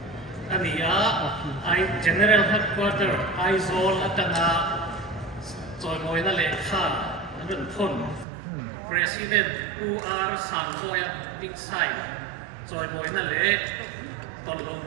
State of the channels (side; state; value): left; drops out; at 8.2 s